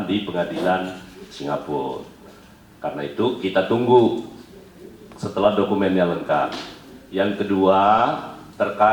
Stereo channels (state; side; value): identical; both; correlation 1.00